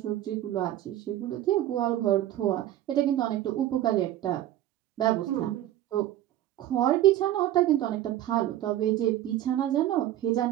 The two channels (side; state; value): left; quieter; 13.1 dB